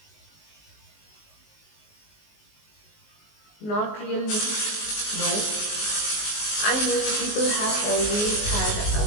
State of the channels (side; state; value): right; late; 19 ms